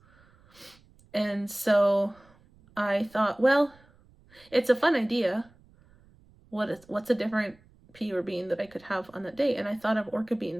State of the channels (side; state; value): right; noise; rumble, 29 dB below the sound